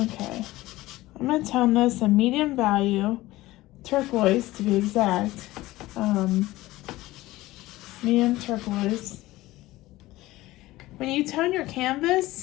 I'm going to tone this a medium value, turquoise to be exact, medium turquoise. When you tone your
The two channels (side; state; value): right; quieter; 17.9 dB